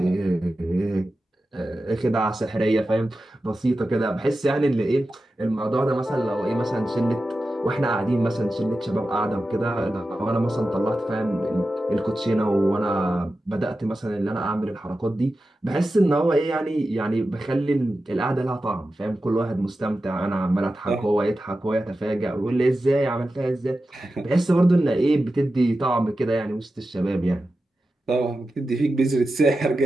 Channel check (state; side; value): normal; both; correlation 0.92